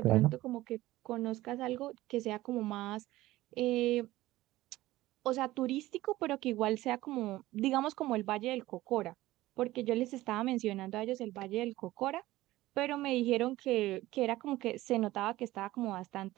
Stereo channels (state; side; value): quieter; left; 17.0 dB